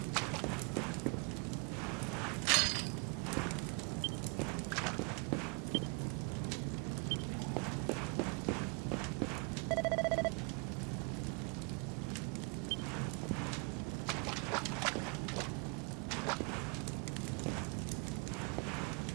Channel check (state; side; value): quieter; left; 32.3 dB